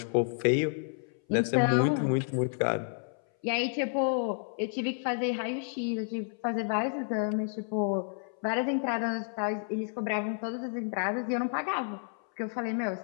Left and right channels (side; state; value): right; silent; 57 dB below the other